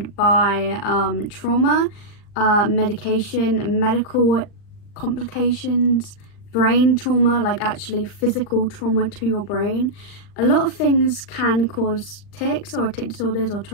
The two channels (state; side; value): late; right; 40 ms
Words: by trauma, medication, medical complications, brain trauma, like actually physical trauma to your brain. A lot of things can cause tics or tic disorders or